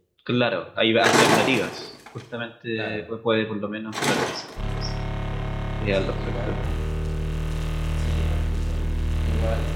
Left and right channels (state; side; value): identical; both; correlation 1.00